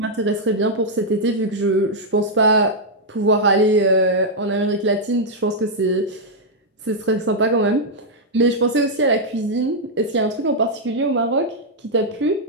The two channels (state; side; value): normal; both; correlation -0.04